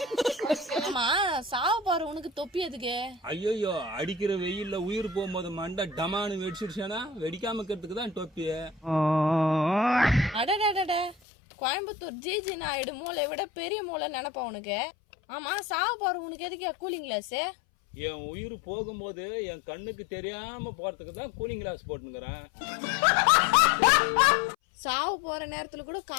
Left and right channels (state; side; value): drops out; right; at 11.2 s